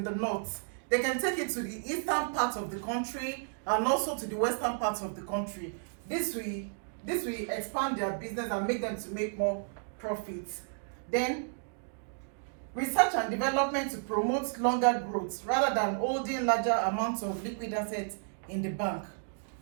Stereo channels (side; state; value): left; silent; digital silence